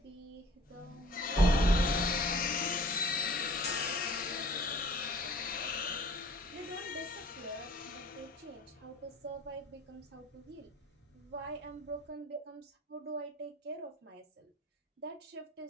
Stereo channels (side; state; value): both; normal; correlation 0.51